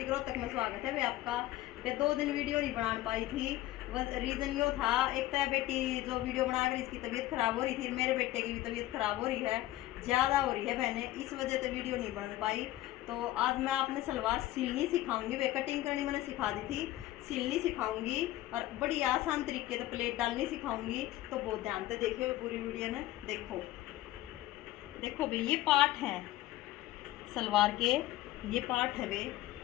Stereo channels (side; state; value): right; quieter; 15.6 dB